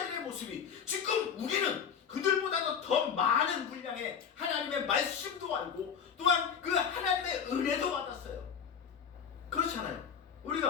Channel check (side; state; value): right; quieter; 7.3 dB